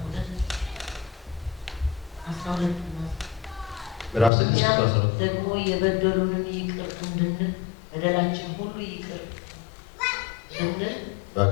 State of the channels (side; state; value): right; drops out; at 4.3 s